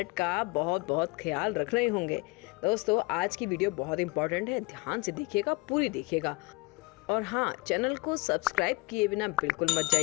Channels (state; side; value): quieter; right; 25.9 dB